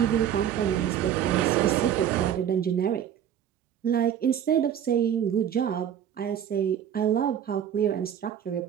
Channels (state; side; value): quieter; left; 9.5 dB